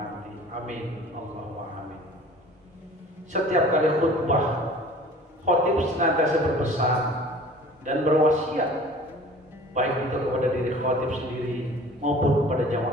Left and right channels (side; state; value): both; normal; correlation 0.46